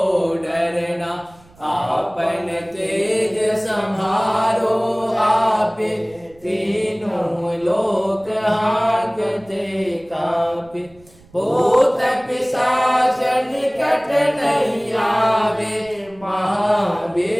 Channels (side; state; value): right; noise; rumble, 27 dB below the sound